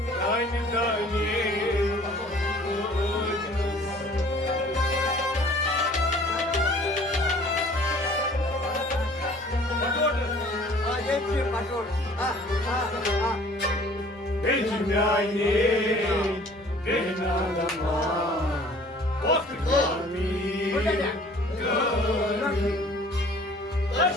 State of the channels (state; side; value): noise; right; rumble, 28 dB below the sound